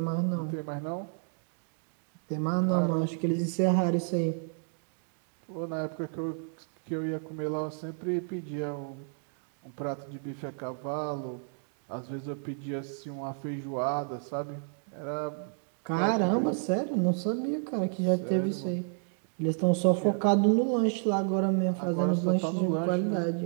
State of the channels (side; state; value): left; silent; 56 dB below the other